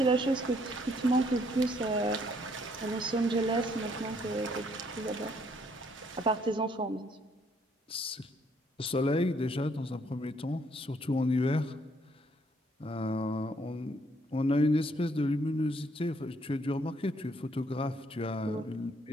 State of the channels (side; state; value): both; normal; correlation 0.68